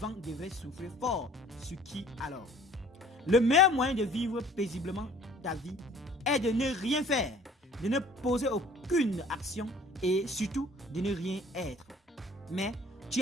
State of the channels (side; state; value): both; normal; correlation 0.52